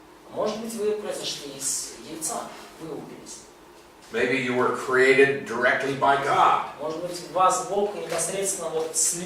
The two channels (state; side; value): identical; both; correlation 1.00